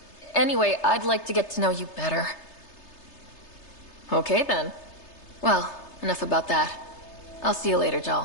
Anyway, I'd like to get to know you better. Okay, then. Well, enough about that. I'll see you later,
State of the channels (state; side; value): late; right; 3.3 ms